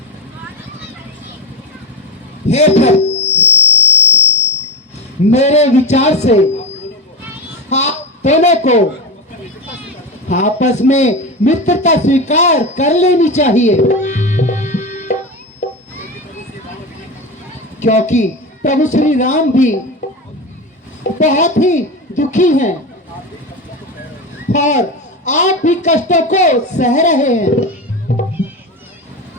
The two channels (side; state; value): both; normal; correlation 0.20